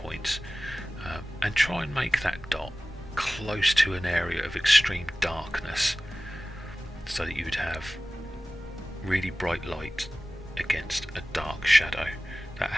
and try and make that dot close to an area of extreme darkness so that you would have really bright light against a dark shadow. That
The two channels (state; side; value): normal; both; correlation 0.97